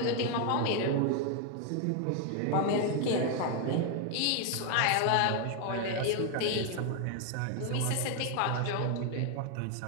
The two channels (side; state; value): both; different; correlation 0.00